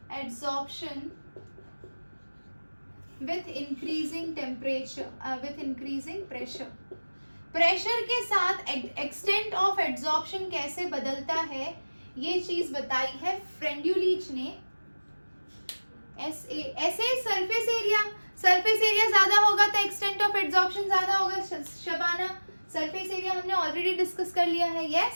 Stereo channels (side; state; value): both; inverted; correlation -1.00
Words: with increasing temperature, with increasing pressure. Pressure के साथ एक्सटेंट ऑफ एड्सॉर्प्शन कैसे बदलता है ये चीज बताई है फ्रेंड्यूलिच ने। ऐसे सरफेस एरिया ज्यादा होगा तो एक्सटेंट ऑफ एड्सॉर्प्शन ज्यादा होगा। शबाना, सरफेस एरिया हमने ऑलरेडी डिस्कस कर लिया है।